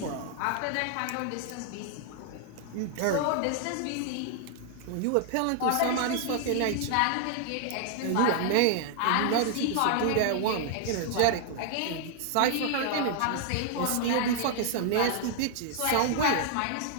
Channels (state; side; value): different; both; correlation 0.00